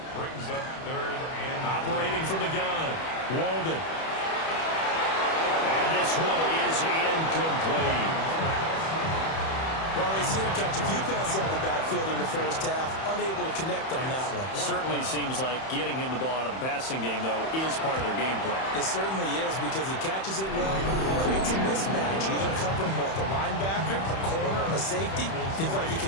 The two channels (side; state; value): right; late; 31 ms